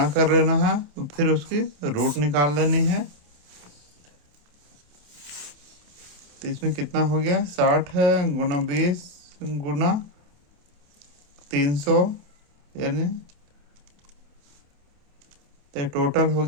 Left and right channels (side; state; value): left; late; 27 ms